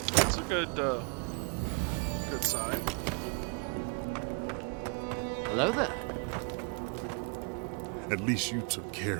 That's a good sign. Hello there. At least you took care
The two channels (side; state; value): left; quieter; 35.5 dB